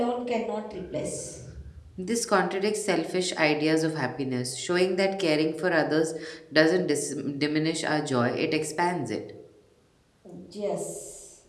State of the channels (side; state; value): both; identical; correlation 1.00